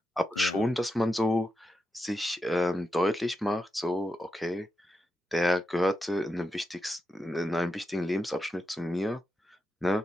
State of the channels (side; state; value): both; normal; correlation 0.87